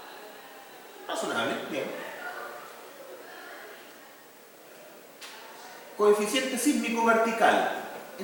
Razonable, bien. Coeficiente sísmico vertical.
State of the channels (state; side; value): identical; both; correlation 1.00